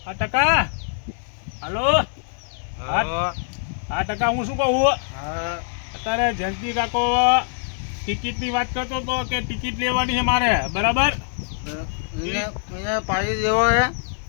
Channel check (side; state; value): right; silent; digital silence